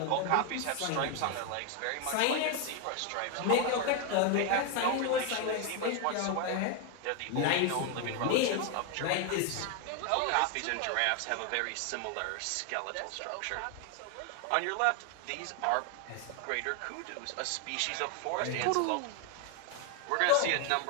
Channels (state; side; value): different; both; correlation 0.01